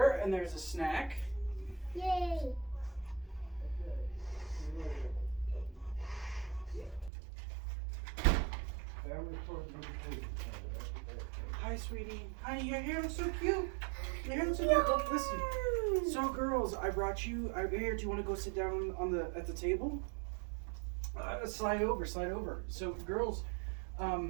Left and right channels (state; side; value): drops out; left; at 7.1 s